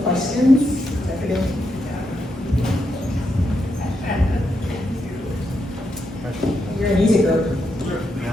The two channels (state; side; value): normal; both; correlation 0.82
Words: You're an easy group.